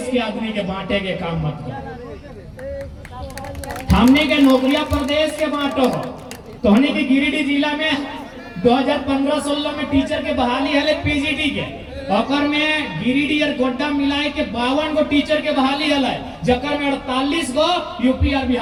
के आदमी के बांटे के काम मत करो। हमने के नौकरियां प्रदेश के बांटो। तो हमने के गिरिडीह जिला में 2015-16 में टीचर के बहाली है पीजीटी के, ओकर में गिरिडीह और गोड्डा मिलाए के 52 गो टीचर के बहाली है, जकर में 48 गो यूपी और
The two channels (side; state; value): both; identical; correlation 1.00